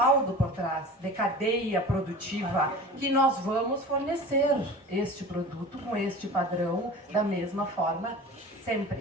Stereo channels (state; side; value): normal; both; correlation 0.37